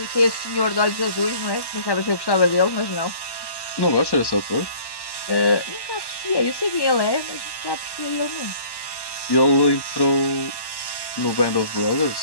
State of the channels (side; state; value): right; late; 1.1 ms